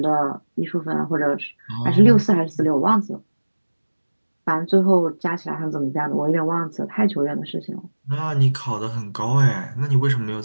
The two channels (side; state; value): both; inverted; correlation -1.00